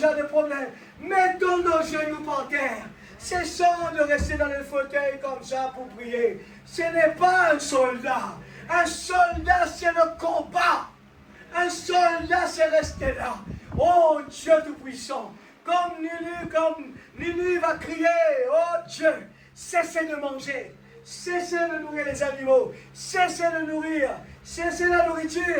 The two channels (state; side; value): identical; both; correlation 1.00